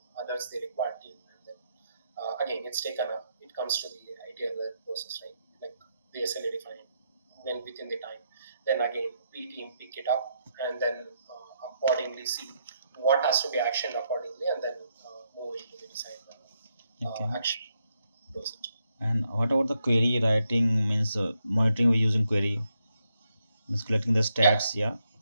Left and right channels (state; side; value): inverted; both; correlation -0.79